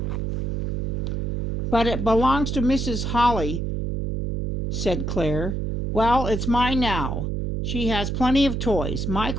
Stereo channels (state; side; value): noise; right; hum, 1 dB below the sound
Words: "But it belongs to Mrs. Holly," said Claire. "Well, it's mine now. She has plenty of toys."